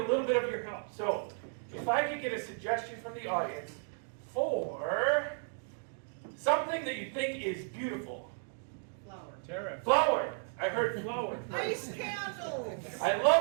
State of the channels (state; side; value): silent; left; 55 dB below the other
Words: little bit of your help, so if I could get a suggestion from the audience for something that you think is beautiful. Flower. Tara. Flower. I heard flower. Ice candles. I